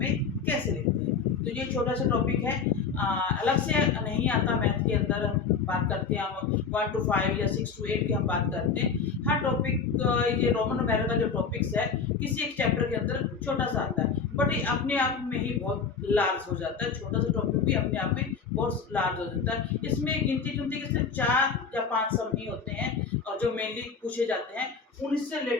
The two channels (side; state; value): right; quieter; 5.6 dB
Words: कैसे लिखते हैं। तो ये छोटा सा टॉपिक है, अलग से नहीं आता मैथ के अंदर। हम बात करते हैं, हम 1 to 5 या 6 to 8 की हम बात करते हैं। हर टॉपिक, ये रोमन न्यूमेरल का जो टॉपिक्स है किसी एक चैप्टर के अंदर छोटा सा आता है, बट ये अपने आप में ही बहुत लार्ज हो जाता है। छोटा सा टॉपिक भी अपने आप में बहुत लार्ज हो जाता है। इसमें गिनती चुनती के सिर्फ 4 या 5 सम ही होते हैं और जो मेनली पूछे जाते हैं उनसे